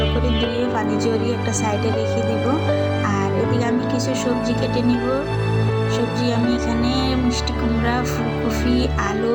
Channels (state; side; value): identical; both; correlation 1.00